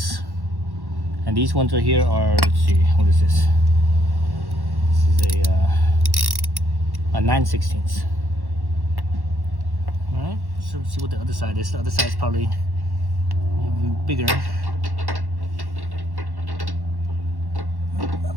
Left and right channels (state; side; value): late; left; 1.1 ms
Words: and these ones right here are, let's see, what is this? This is a 9/16. All right, so let's see what the other side is. The other side is probably even bigger.